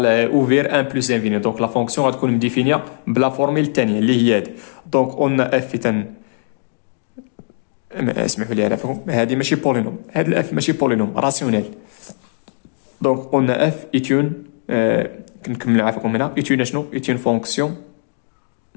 اوفير 1 بلس انفيني. دونك لا فونكسيون غتكون مديفينيا بلا فورميل الثانيه اللي هي هادي. دونك قلنا اف اسمحوا لي على فهم، هذه ماشي بولينوم، هاد الاف ماشي بولينوم راسيونيل. دونك قلنا اف ايتون كنكمل عافاكم هنا ايتون شنو؟ ايتون فونكسيون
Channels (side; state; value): right; silent; digital silence